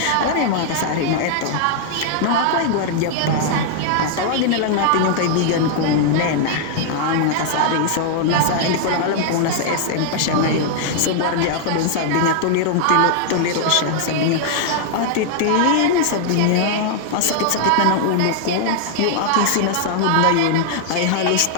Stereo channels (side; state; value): both; different; correlation 0.00